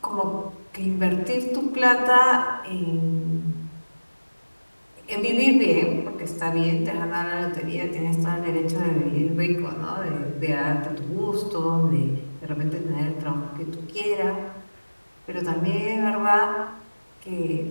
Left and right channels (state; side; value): inverted; both; correlation -1.00